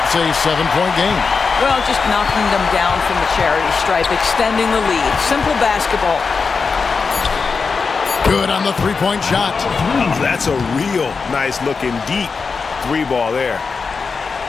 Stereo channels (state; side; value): quieter; right; 4.9 dB